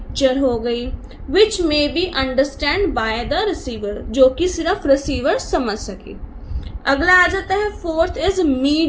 हो गई, which may be understand by the receiver, जो कि सिर्फ रिसीवर समझ सके. अगला आ जाता है फोर्थ इज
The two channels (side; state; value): both; identical; correlation 1.00